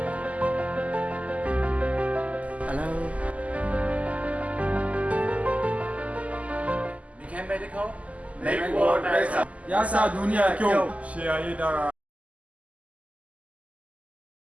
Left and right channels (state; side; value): late; left; 0.069 ms